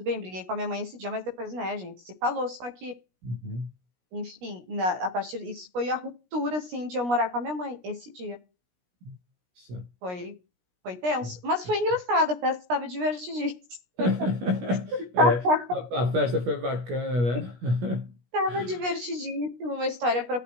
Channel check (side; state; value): left; late; 17 ms